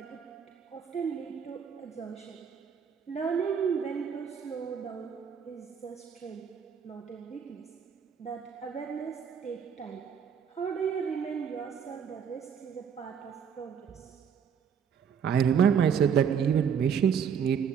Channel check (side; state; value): left; quieter; 7.4 dB